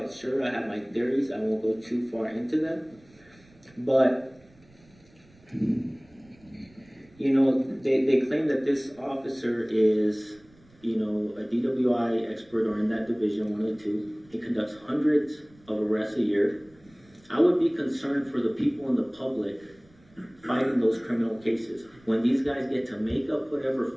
sure. I have my theories. I won't go too far into them. But, they claim that this officer is, a DWI expert or in that division, one of the two. He conducts hundreds of arrests a year. I would be concerned for the people in the public fighting those criminal cases. When these guys get to make up whatever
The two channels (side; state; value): right; noise; rumble, 29 dB below the sound